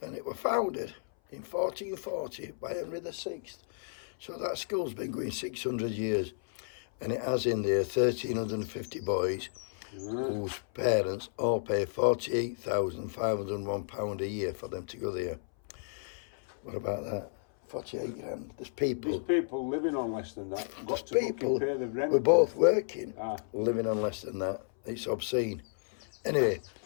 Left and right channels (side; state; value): right; silent; 56 dB below the other